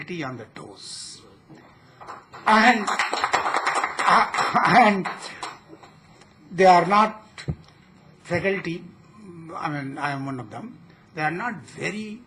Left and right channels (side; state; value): both; identical; correlation 1.00